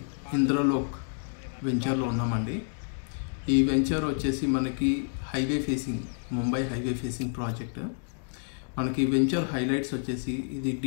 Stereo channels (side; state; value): right; silent; digital silence